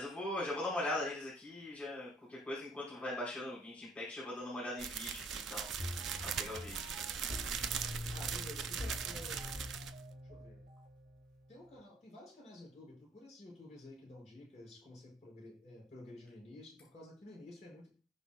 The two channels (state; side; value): normal; both; correlation 0.58